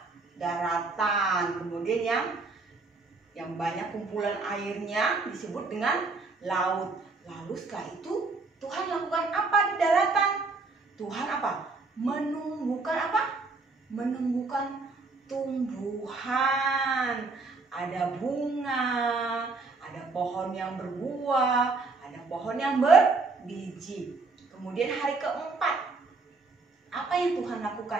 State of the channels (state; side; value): quieter; left; 3.9 dB